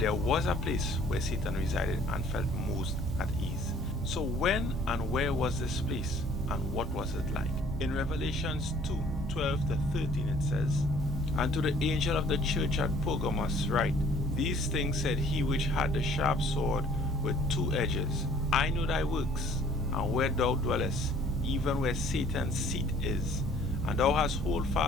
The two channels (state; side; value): normal; both; correlation 0.55